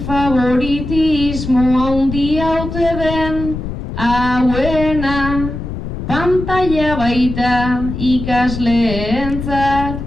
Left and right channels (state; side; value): noise; left; rumble, 7 dB below the sound